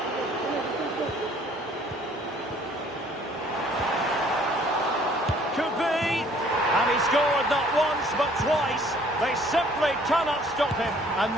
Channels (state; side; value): normal; both; correlation 0.58